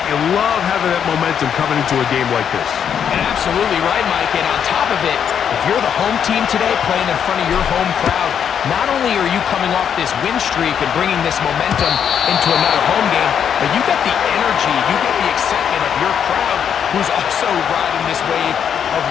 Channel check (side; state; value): right; quieter; 8.2 dB